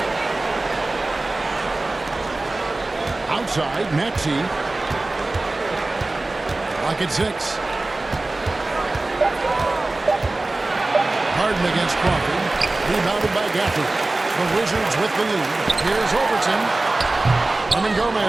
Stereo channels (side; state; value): left; quieter; 3.0 dB